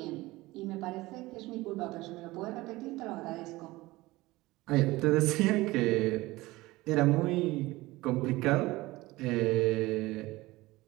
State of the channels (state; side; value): quieter; left; 19.7 dB